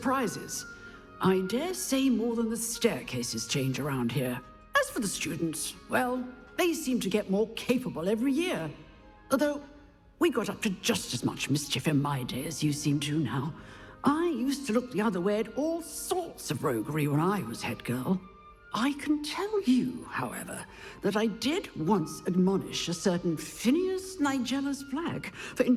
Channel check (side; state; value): both; identical; correlation 1.00